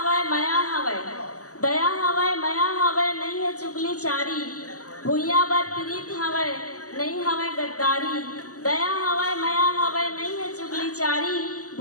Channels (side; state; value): right; late; 0.66 ms